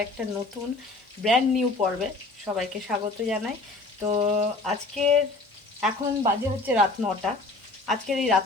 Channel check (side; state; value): right; quieter; 3.2 dB